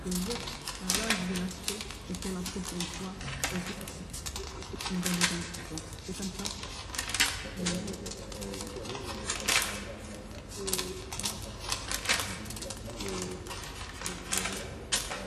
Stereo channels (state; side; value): identical; both; correlation 1.00